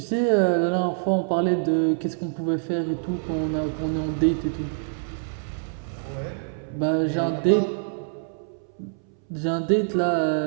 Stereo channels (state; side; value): silent; left; 62 dB below the other